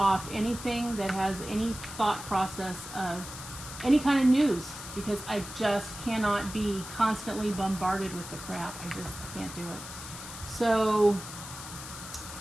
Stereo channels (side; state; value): left; noise; hiss, 11 dB below the sound